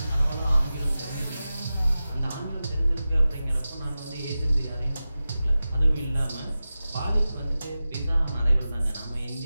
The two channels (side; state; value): both; inverted; correlation -0.94